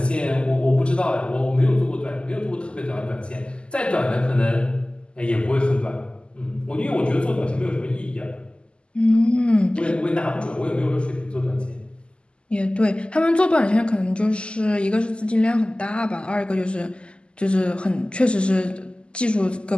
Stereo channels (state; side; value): late; right; 0.052 ms